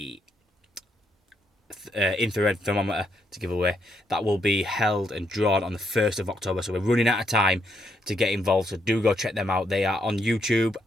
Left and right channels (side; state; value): both; normal; correlation 0.77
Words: infrared thermometer to give away. That will be held and drawn on the 1st of October, so we're running out of time to get involved, so do go check them out. They are on YouTube